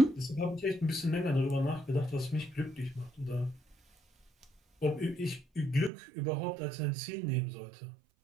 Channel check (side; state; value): left; drops out; at 5.9 s